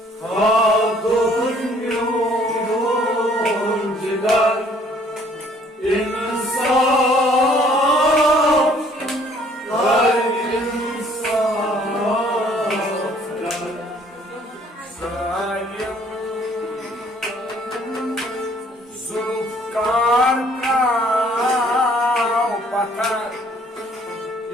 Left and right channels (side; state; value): both; normal; correlation 0.60